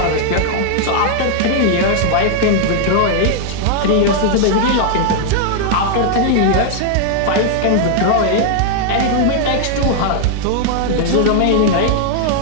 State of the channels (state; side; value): different; both; correlation -0.01